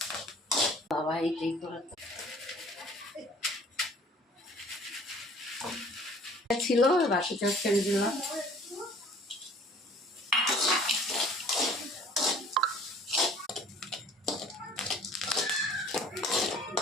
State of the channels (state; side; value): normal; both; correlation 0.52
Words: বাবা এইটাই করে ছিল, বাকিটা ছেড়ে দিলাম।